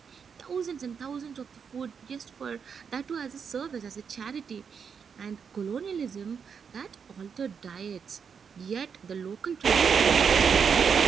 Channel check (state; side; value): quieter; left; 6.6 dB